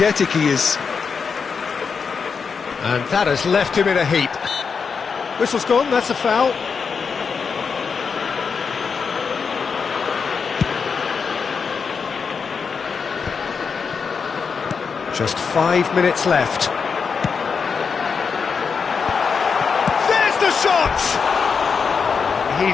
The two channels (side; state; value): right; quieter; 5.7 dB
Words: he is. And that has left him in a heap. Whistle's gone, that's a foul. Just 5 minutes left. There's the shot!